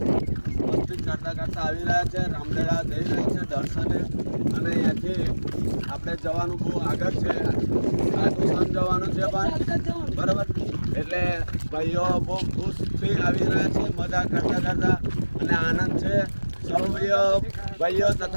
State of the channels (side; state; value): both; inverted; correlation -1.00